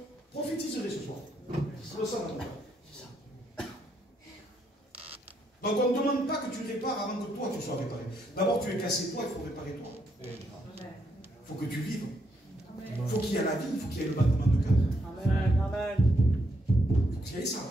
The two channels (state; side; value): normal; both; correlation 0.76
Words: prophétiserais ce soir. Je le sens dans mon cœur. Donc on ne demande pas que tu répares avant que toi tu sois réparé. D'abord tu es cassé toi, il faut réparer toi. Il faut que tu vives. Il faut qu'il y ait la vie, il faut qu'il y ait le battement de cœur. Amen. Il faut qu'il y ait ça.